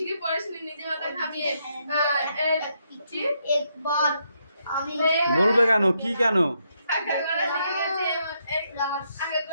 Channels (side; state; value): both; inverted; correlation -0.77